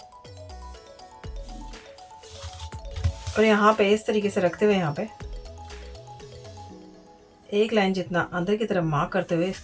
और यहाँ पे इस तरीके से रखते हुए यहाँ पे एक लाइन जितना अंदर की तरफ मार्क करते हुए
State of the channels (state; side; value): identical; both; correlation 1.00